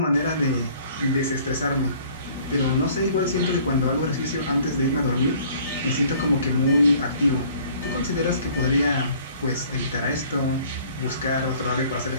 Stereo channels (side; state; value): both; inverted; correlation -0.54